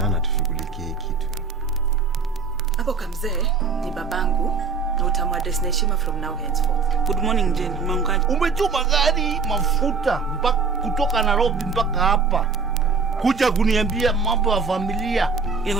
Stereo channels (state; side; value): quieter; left; 5.0 dB